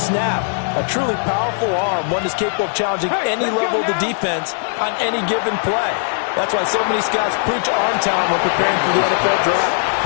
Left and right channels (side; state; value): right; silent; digital silence